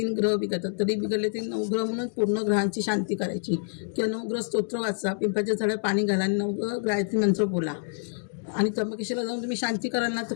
ग्रह बिघडतात. तरी बिघडले ते 9 ग्रह म्हणून पूर्ण ग्रहांची शांती करायची. किंवा 9 ग्रह स्तोत्र वाचा, पिंपळाच्या झाडात पाणी घाला आणि 9 गायत्री मंत्र बोला. आणि त्र्यंबकेश्वरला जाऊन तुम्ही शांती कराल ना तर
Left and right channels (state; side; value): silent; right; digital silence